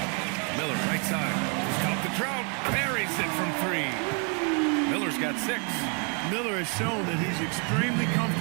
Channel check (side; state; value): left; quieter; 37.1 dB